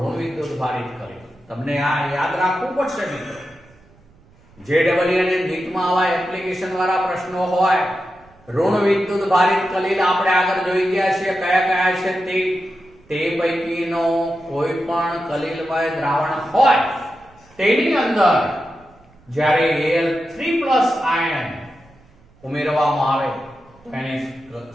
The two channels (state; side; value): noise; right; rumble, 29 dB below the sound